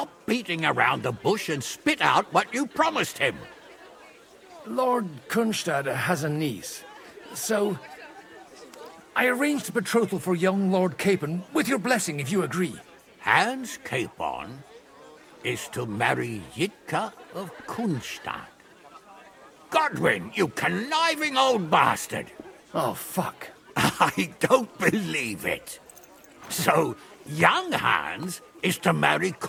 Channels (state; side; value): identical; both; correlation 1.00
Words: beating around the bush and spit out what you promised him. Lord Kunstad has a niece, so... I arranged a betrothal for young Lord Capon, with your blessing if you agree. Hans Capon is to marry Yitka of Kunstadt. Godwin, you conniving old bastard! Oh, fuck. I don't believe it. So, young Hans is to marry